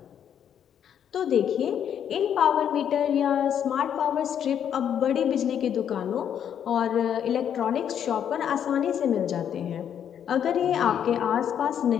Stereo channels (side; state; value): right; quieter; 9.0 dB